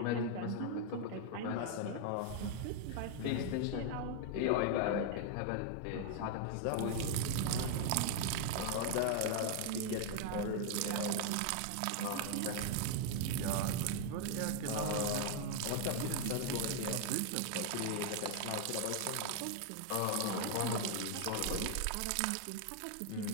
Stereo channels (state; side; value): different; both; correlation 0.00